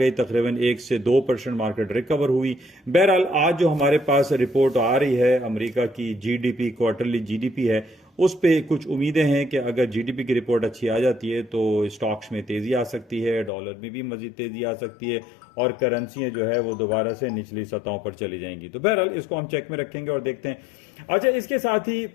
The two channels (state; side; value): drops out; right; at 13.5 s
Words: तकरीबन 1 से 2% मार्केट रिकवर हुई। बहरहाल आज जो हमारे पास रिपोर्ट आ रही है अमेरिका की GDP, क्वार्टरली GDP है, उस पे कुछ उम्मीदें हैं कि अगर GDP की रिपोर्ट अच्छी आ जाती है तो स्टॉक्स में तेजी आ सकती है, डॉलर में भी मजीद तेजी आ सकती है, और करेंसियां जो है वो दोबारा से निचली सतहों पर चली जाएंगी। तो बहरहाल इसको हम चेक में रखेंगे और देखते हैं। अच्छा, इसके साथ ही